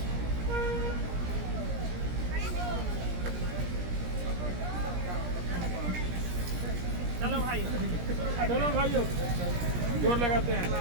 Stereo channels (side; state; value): left; late; 17 ms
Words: चलो भाई, चलो भाइयों, जोर लगाते हैं।